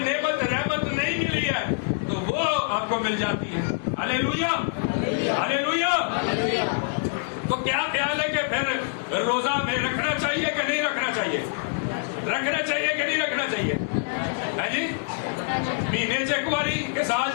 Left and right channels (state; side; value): silent; right; 61 dB below the other